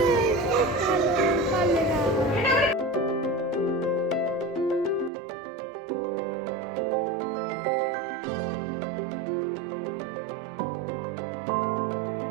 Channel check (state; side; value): drops out; left; at 5.1 s